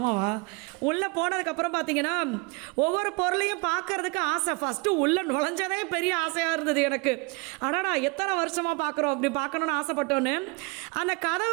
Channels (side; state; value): left; quieter; 28.8 dB